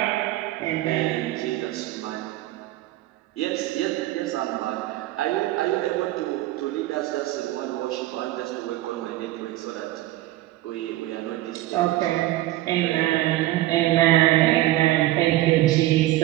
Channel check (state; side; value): quieter; left; 16.1 dB